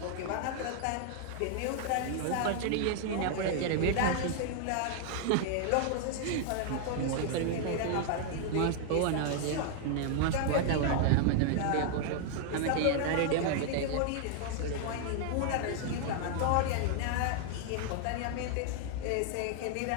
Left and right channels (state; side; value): different; both; correlation 0.00